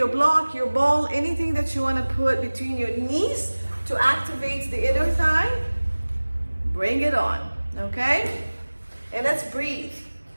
block, your ball, anything that you want to put between your knees to activate the inner thigh. Bring it on, okay? And let's breathe.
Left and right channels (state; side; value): inverted; both; correlation -1.00